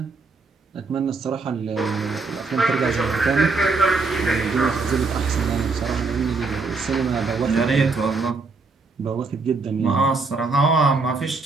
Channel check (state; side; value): quieter; left; 4.1 dB